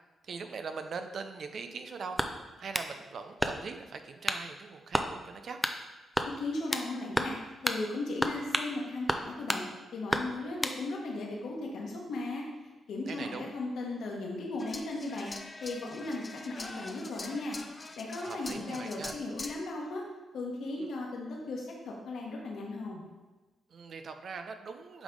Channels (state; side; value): normal; both; correlation 0.87